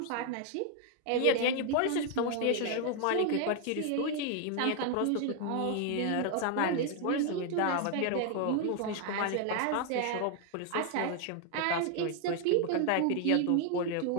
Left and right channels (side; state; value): both; different; correlation 0.00